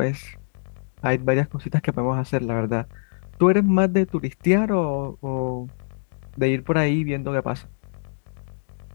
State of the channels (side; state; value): right; silent; digital silence